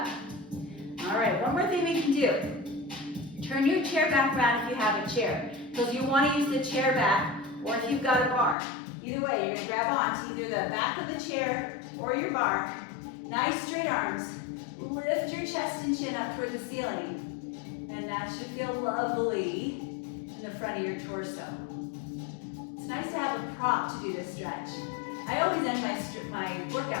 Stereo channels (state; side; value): drops out; right; at 8.6 s